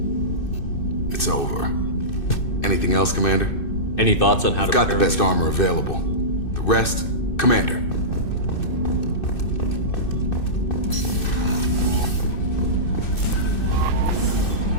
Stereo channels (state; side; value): late; right; 2.6 ms